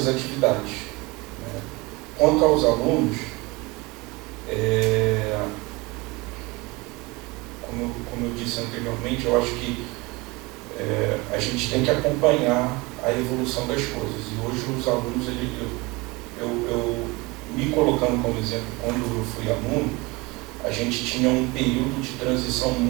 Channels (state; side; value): quieter; left; 24.3 dB